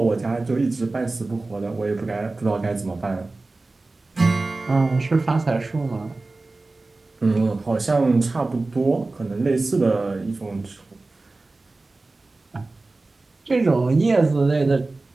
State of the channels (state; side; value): quieter; left; 3.3 dB